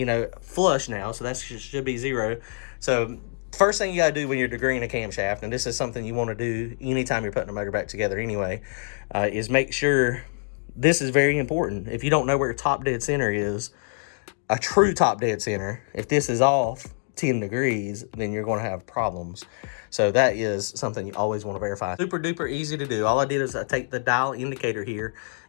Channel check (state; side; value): silent; right; digital silence